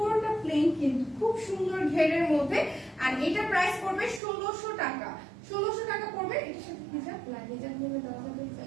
প্লেন কিন্তু খুব সুন্দর ঘেরের মধ্যে। আর এটা প্রাইস পড়বে 1600 টাকা। 1600 টাকা পড়বে। এটার সাথে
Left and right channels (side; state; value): left; drops out; at 4.2 s